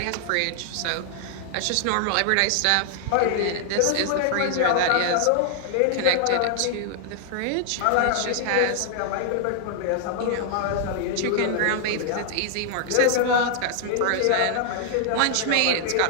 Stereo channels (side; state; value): both; different; correlation 0.00